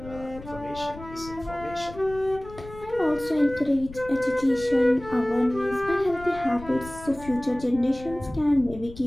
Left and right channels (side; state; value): left; noise; rumble, 16 dB below the sound